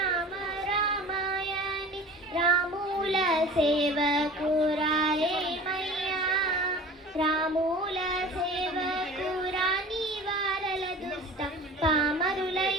రామాయణి రాముల సేవకు రారేమయ్యా, రాముల సేవకు రాని వారల దుష్ట పామరులై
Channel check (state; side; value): normal; both; correlation 0.41